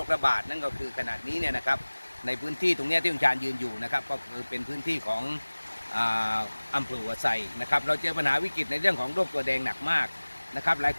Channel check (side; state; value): both; inverted; correlation -1.00